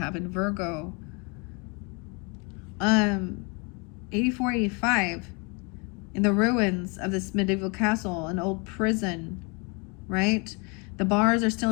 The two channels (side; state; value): right; quieter; 31.7 dB